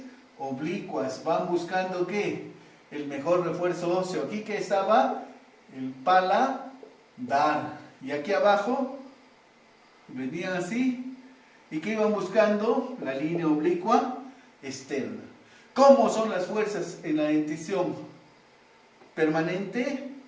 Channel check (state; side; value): identical; both; correlation 1.00